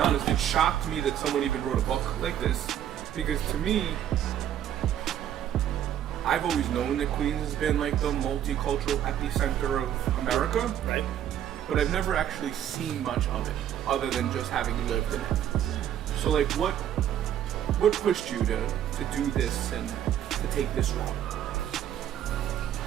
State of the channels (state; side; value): quieter; left; 10.6 dB